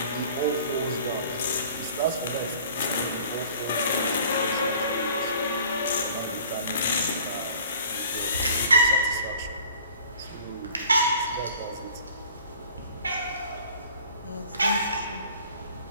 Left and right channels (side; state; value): both; inverted; correlation -0.49